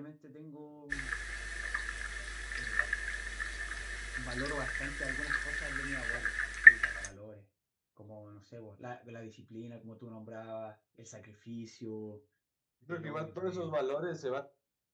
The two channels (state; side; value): identical; both; correlation 1.00